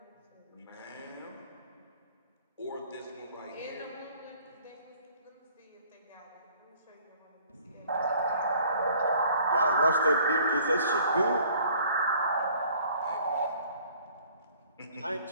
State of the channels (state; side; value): inverted; both; correlation -0.55